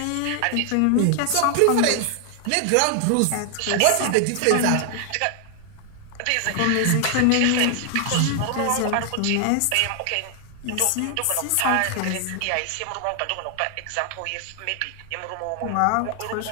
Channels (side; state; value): both; different; correlation 0.00